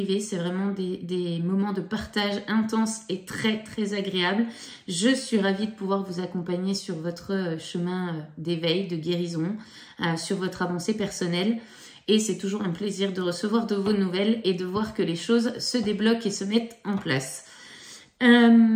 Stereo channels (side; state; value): both; identical; correlation 1.00